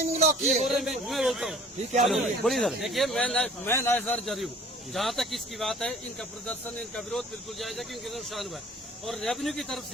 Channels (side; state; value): both; normal; correlation 0.50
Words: लॉक की है। मैं बोलता हूँ ठीक है, बोलिए सर। देखिए मैं नायसर जरी हूँ, जहाँ तक इसकी बात है इनका प्रदर्शन, इनका विरोध बिल्कुल जायज है क्योंकि नुकसान हुआ है। और रेवेन्यू की तरफ